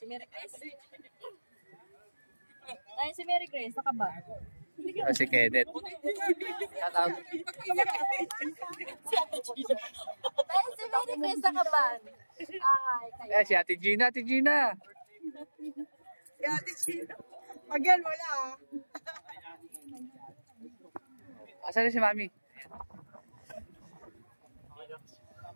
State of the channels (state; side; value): inverted; both; correlation -1.00